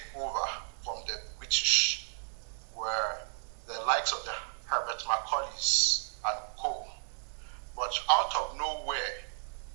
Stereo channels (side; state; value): left; silent; digital silence